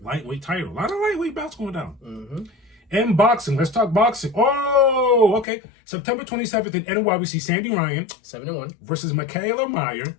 lightweight title. A lot of lightweight bouts going down. And boxing. Let's talk boxing. Oh, okay. September 27th in NY, we see Sandy Ryan 7-1 versus Michaela Meyer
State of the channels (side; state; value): right; drops out; at 5.5 s